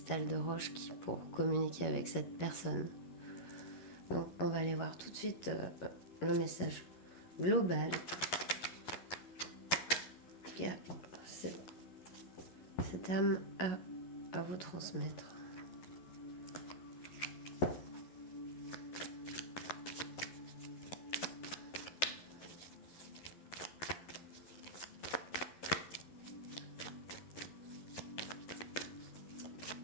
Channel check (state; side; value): late; right; 11 ms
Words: de roche pour communiquer avec cette personne. Donc, on va aller voir tout de suite le message global que cette âme a à vous transmettre.